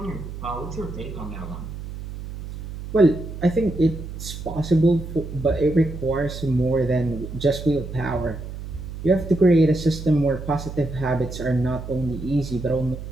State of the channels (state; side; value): noise; right; hum, 10 dB below the sound